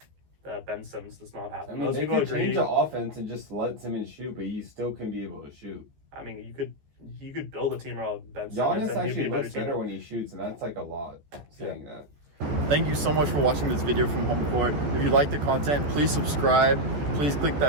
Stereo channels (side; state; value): left; late; 14 ms